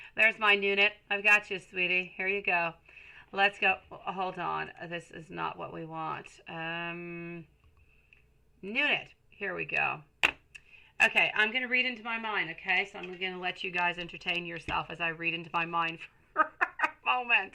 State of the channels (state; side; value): identical; both; correlation 1.00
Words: There's my Nunit. I've got you, sweetie. Here you go. Let's go. Hold on. This is not what we want. Nunit. Here we go. Okay, I'm going to read into my mind, okay? So I'm going to let you guys entertain yourself as I read into my mind for a